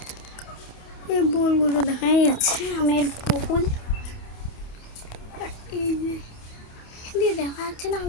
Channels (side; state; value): right; late; 28 ms